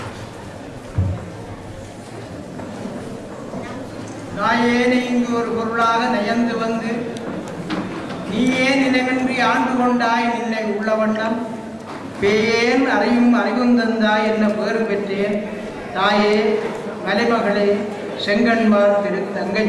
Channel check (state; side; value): identical; both; correlation 1.00